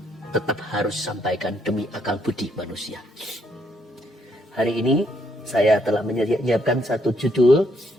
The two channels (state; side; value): normal; both; correlation 0.72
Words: tetap harus sampaikan demi akal budi manusia. Hari ini saya telah menyiapkan satu judul,